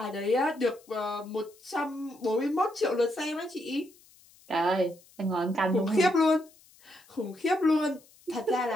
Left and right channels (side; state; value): left; noise; hiss, 27 dB below the sound